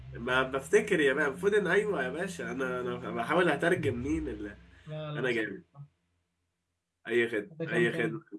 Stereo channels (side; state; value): both; identical; correlation 1.00